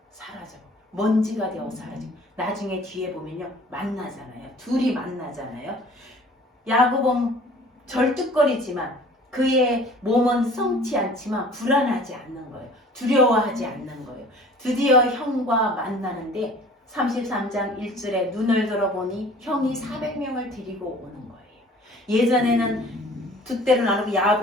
사라져. 먼지가 되어 사라지고 나중에 뒤에 보면요 만나잖아요. 둘이 만나잖아요. 야곱은 절뚝거리지만 그의 몸은 성치 않지만 불안하지 않는 거예요. 두려워하지 않는 거예요. 드디어 형과 만나는데 33장 1절에 눈을 들어보니 형이 400명을 데리고 오는 거예요. 예전에는 두 때로 나누고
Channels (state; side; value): normal; both; correlation 0.49